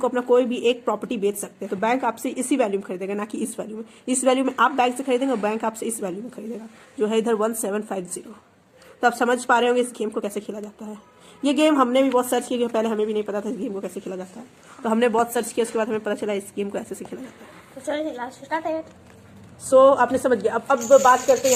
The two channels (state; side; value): identical; both; correlation 1.00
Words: को अपना कोई भी एक प्रॉपर्टी बेच सकते हैं। तो बैंक आपसे इसी वैल्यू में खरीदेगा, ना कि इस वैल्यू में। इस वैल्यू में आप बैंक से खरीदेंगे और बैंक आपसे इस वैल्यू में खरीदेगा, जो है इधर 1750। तो आप समझ पा रहे होंगे इस गेम को कैसे खेला जाता है। ये गेम हमने भी बहुत सर्च किया, पहले हमें भी नहीं पता था इस गेम को कैसे खेला जाता है। तो हमने बहुत सर्च किया, उसके बाद हमें पता चला इस गेम को ऐसे खेला जाता है। सो आपने समझ गया। अब बात करते हैं